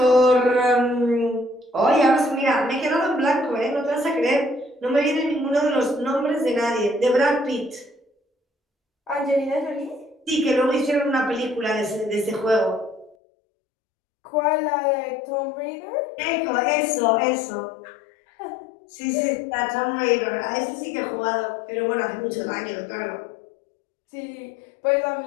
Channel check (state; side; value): drops out; right; at 13.2 s